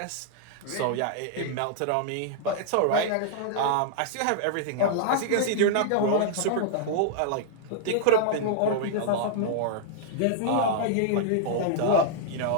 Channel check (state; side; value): different; both; correlation -0.01